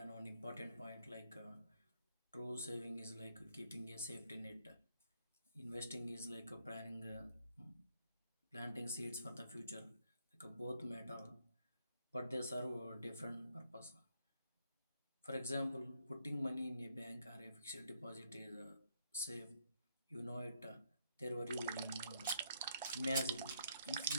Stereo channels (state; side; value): inverted; both; correlation -0.73